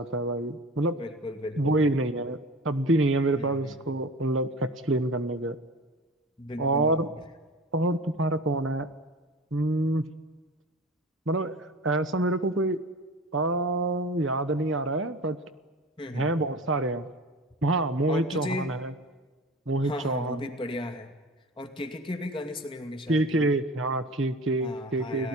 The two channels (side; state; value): both; normal; correlation 0.36